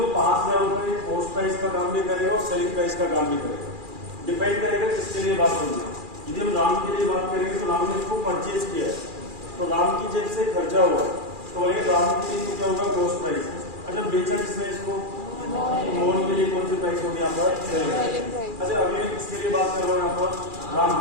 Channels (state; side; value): late; left; 2.4 ms